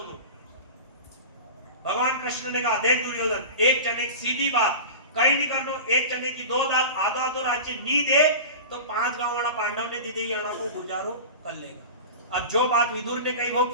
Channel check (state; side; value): inverted; both; correlation -0.32